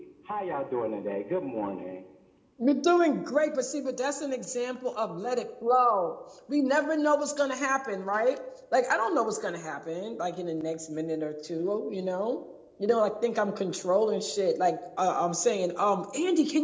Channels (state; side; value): identical; both; correlation 1.00